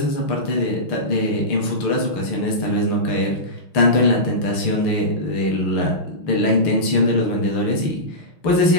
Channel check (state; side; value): late; right; 6.5 ms